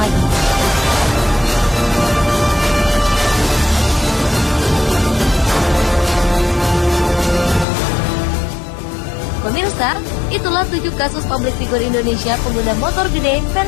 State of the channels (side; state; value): right; drops out; at 7.7 s